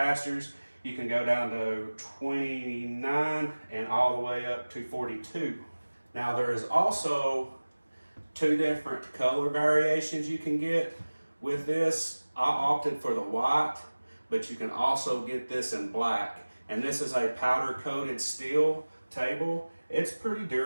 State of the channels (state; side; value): inverted; both; correlation -1.00